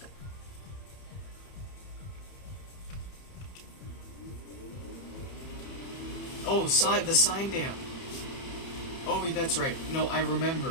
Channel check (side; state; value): right; late; 30 ms